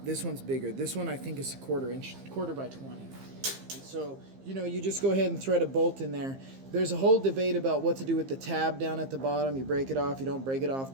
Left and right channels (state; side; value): late; left; 15 ms